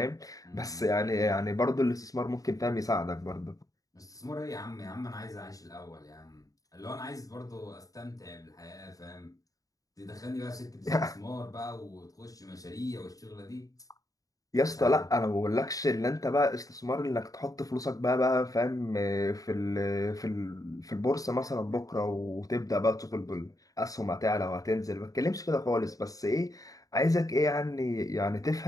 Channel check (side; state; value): right; late; 0.17 ms